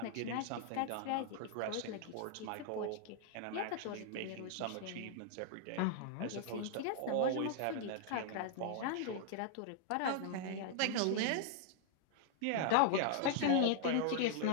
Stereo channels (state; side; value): different; both; correlation -0.01